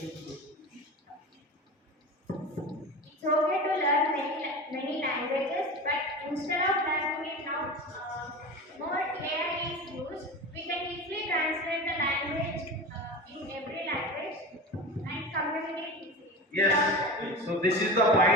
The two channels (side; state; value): both; normal; correlation 0.29